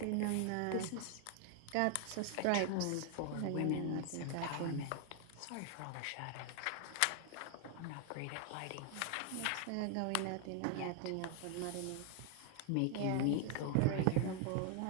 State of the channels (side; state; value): both; different; correlation 0.00